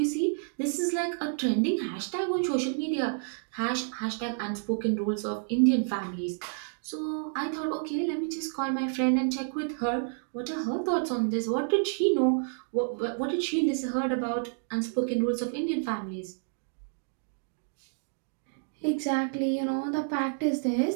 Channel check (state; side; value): silent; left; digital silence